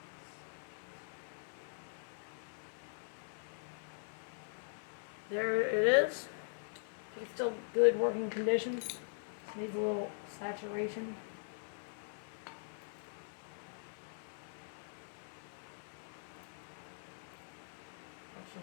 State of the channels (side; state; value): right; silent; 50 dB below the other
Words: There it is. It's still good working condition. Needs a little saturation. Let's